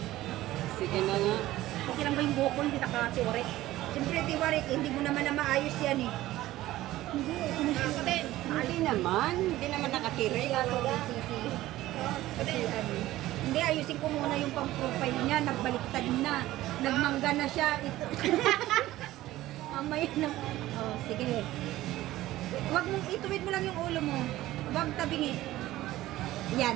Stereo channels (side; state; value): left; quieter; 15.9 dB